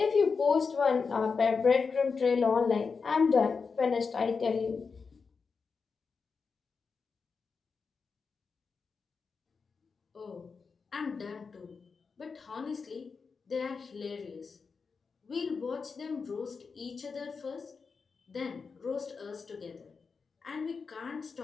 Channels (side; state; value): right; quieter; 5.1 dB